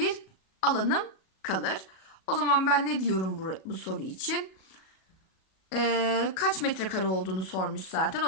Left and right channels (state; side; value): late; right; 37 ms